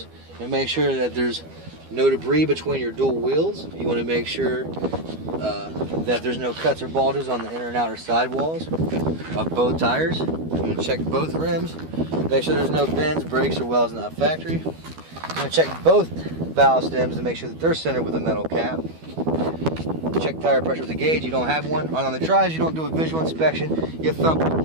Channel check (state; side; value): late; left; 12 ms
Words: You want to make sure that there's no debris between your dual wheels. You want to make sure that there's no cuts or bulges on the inner and outer sidewalls of both tires. You want to check both rims. Make sure there's no bends, breaks, or welds not factory. You want to check both valve stems to make sure that they're centered with a metal cap. Check tire pressure with a gauge. You don't have one. On the drives, you don't do a visual inspection. You thump